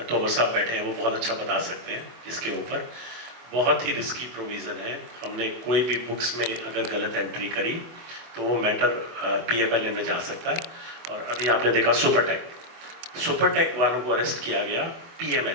तो वो साहब बैठे हैं, वो बहुत अच्छा बता सकते हैं इसके ऊपर। बहुत ही रिस्की प्रोविज़न है। हमने कोई भी बुक्स में अगर गलत एंट्री करी तो वो मैटर PMLA में जा सकता है। और अभी आपने देखा सुपरटेक वालों को अरेस्ट किया गया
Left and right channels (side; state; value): left; late; 24 ms